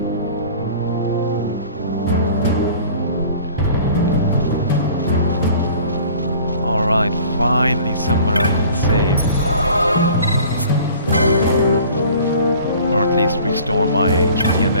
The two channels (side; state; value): both; inverted; correlation -0.48